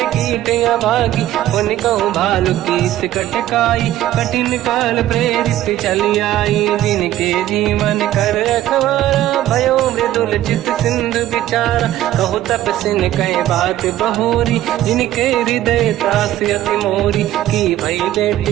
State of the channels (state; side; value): quieter; left; 13.5 dB